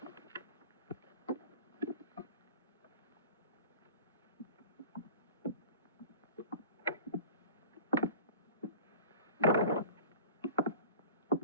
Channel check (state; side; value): inverted; both; correlation -0.41